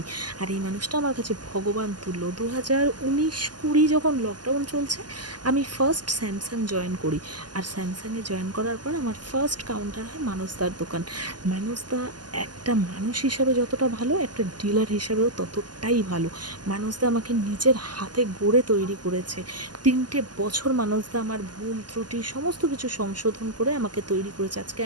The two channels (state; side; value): late; left; 0.70 ms